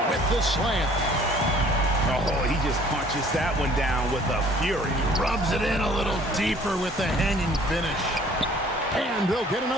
with the slam. Oh, he just punches that one down with a fury. Rubs it in a little deeper with the hanging finish. And they'll get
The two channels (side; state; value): both; normal; correlation 0.55